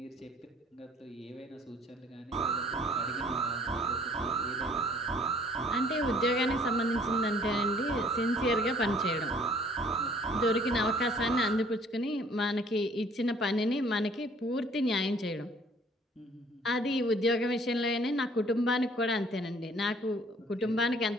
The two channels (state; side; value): normal; both; correlation 0.57